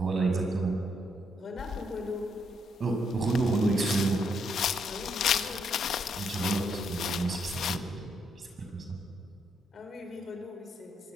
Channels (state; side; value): normal; both; correlation 0.75